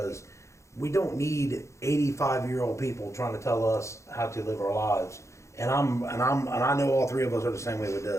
we don't need 85-year-old people trying to tell us how to live our lives. And I know all three of us are the same way with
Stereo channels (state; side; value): late; right; 0.14 ms